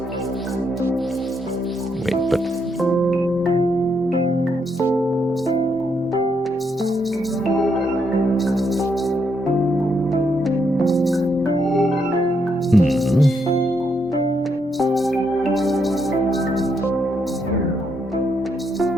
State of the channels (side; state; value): both; normal; correlation 0.77